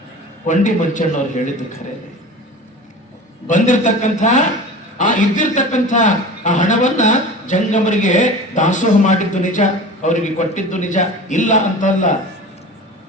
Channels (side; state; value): both; normal; correlation 0.35